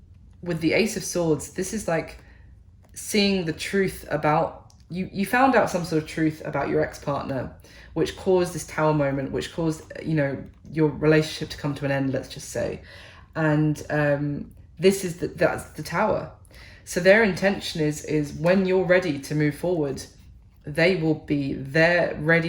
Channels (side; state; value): both; identical; correlation 1.00